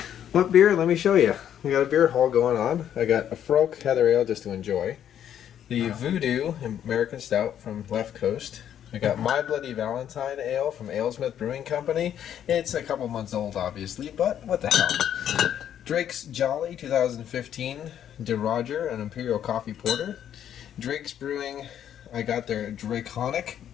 What beer? Let me show you. We got a beer haul going on. I got a Frolk Heather Ale just to enjoy. The Voodoo American Stout from Left Coast. I got My Bloody Valentine Ale from AleSmith Brewing Company. It's a couple months old, obviously, but what the hell. Drake's Jolly 2015 De Roger, an Imperial Coffee Porter. Drake's Brewing, I got their Draconic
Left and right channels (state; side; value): quieter; right; 10.0 dB